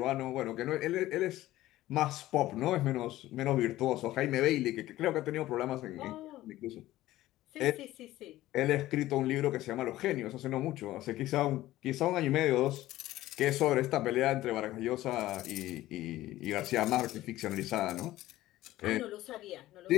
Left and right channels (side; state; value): right; quieter; 15.7 dB